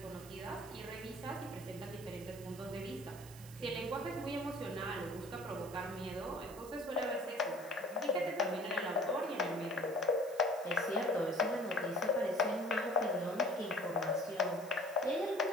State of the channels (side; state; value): right; noise; hiss, 18 dB below the sound